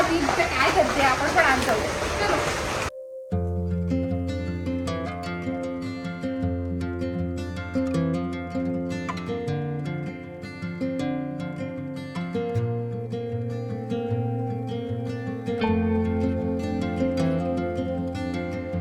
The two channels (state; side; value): identical; both; correlation 1.00